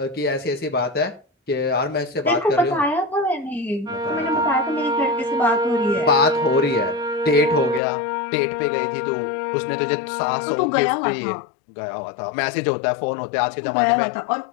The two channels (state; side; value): drops out; right; at 7.8 s